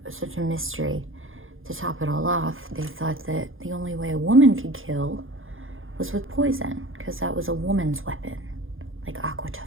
a mystery. To top it all off, they thought that the only way a woman could kill was with poison, because that was a woman's weapon, like Aqua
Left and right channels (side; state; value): left; late; 0.59 ms